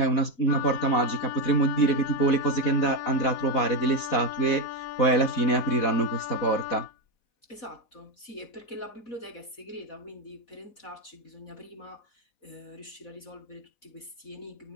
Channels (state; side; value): late; right; 4.1 ms